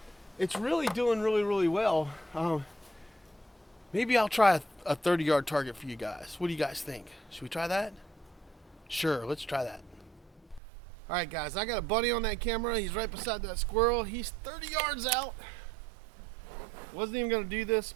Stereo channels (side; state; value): left; drops out; at 10.6 s